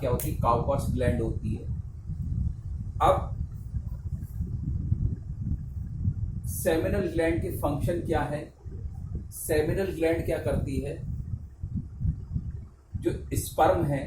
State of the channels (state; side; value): identical; both; correlation 1.00